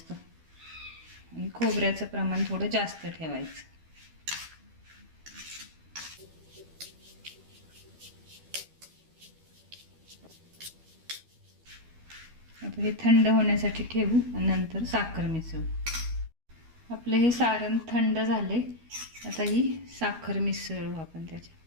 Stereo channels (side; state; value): left; late; 12 ms